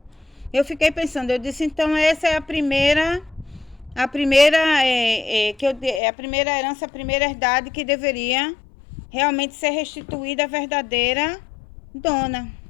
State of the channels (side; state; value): right; drops out; at 6.0 s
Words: eu fiquei pensando, eu disse, então essa é a primeira a primeira herança, a primeira herdade que deveria realmente ser restituída à verdadeira dona.